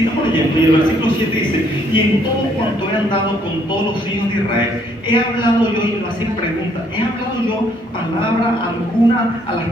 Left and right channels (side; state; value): both; normal; correlation 0.67